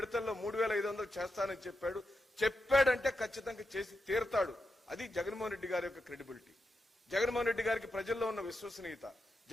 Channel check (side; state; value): both; normal; correlation 0.86